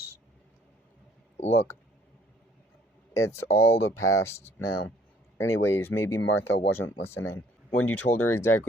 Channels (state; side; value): normal; both; correlation 0.60